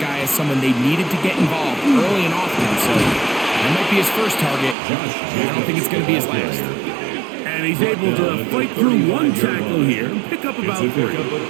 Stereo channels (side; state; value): left; drops out; at 4.8 s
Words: as someone they needed to get involved early and often. So that might be his first target. I don't think it's going to be his last. And he's able to fight through one tackle here and pick up about 3.